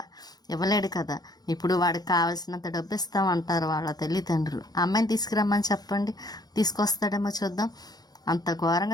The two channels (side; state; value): right; late; 0.19 ms